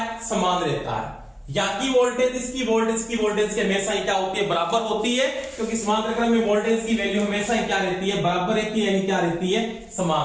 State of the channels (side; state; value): both; identical; correlation 1.00